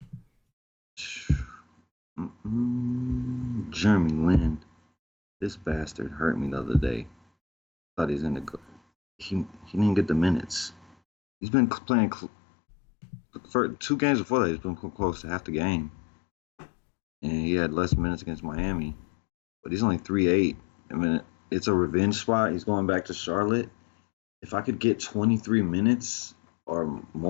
Jeremy Lin, this bastard hurt me the other day. Thought he's gonna go. He didn't get the minutes. He's been playing for 2 games before that. He's been close to half the game, and he had less minutes against Miami. But he's only 3-8. I mean, it's a revenge spot. He's going back to Charlotte. If I could get 23 minutes or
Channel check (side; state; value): right; drops out; at 11.0 s